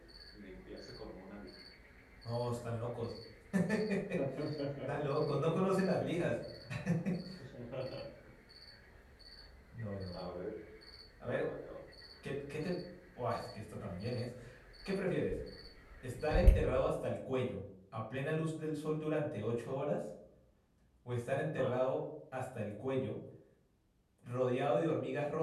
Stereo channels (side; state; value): both; identical; correlation 1.00